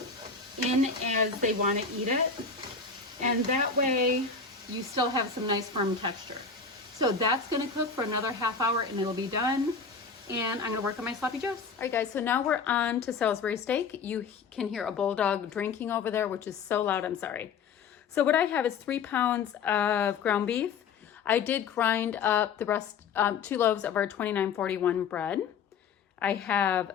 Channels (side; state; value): right; quieter; 5.4 dB